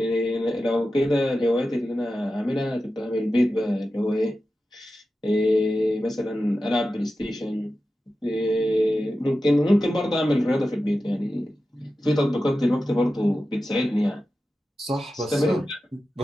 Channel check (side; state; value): both; normal; correlation 0.93